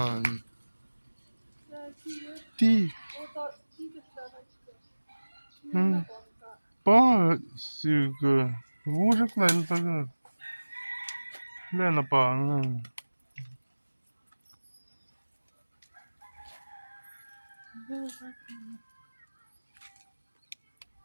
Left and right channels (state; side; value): inverted; both; correlation -1.00